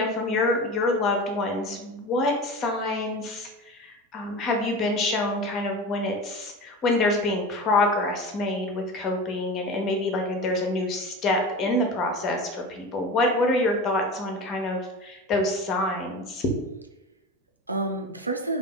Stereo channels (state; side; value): normal; both; correlation 0.30